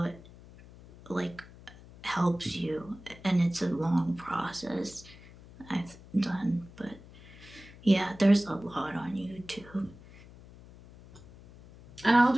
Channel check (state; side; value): noise; left; hum, 20 dB below the sound